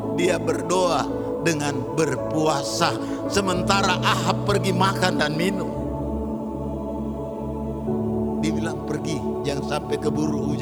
dia berdoa dengan berpuasa, sementara Ahab pergi makan dan minum. Dibilang pergi, jangan sampai keburu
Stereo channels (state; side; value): identical; both; correlation 1.00